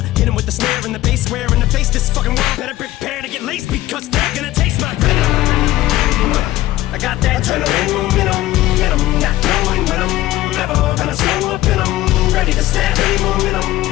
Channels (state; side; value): quieter; right; 15.9 dB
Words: hit him with the snare and the bass, square in the face. This fucking world better prepare to get laced, because they're gonna taste my venom. I got that adrenaline in 'em, not knowing when I'm never gonna slow up in 'em. Ready to snap any